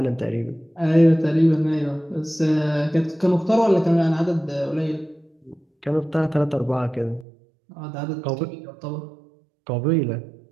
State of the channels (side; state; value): left; drops out; at 7.2 s